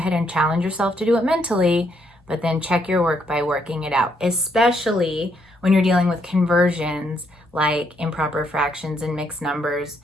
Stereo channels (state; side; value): normal; both; correlation 0.74